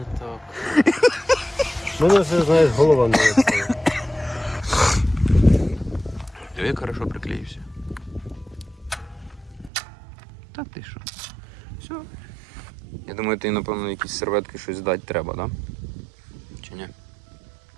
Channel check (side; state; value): left; drops out; at 9.7 s